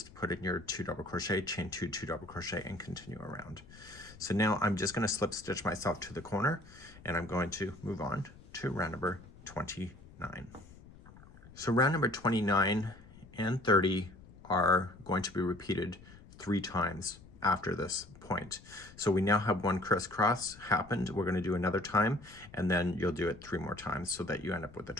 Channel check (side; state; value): left; noise; rumble, 20 dB below the sound